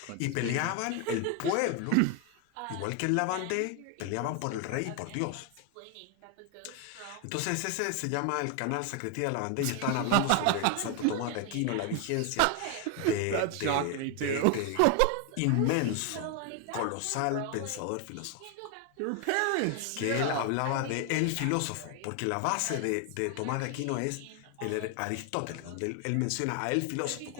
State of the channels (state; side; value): different; both; correlation 0.01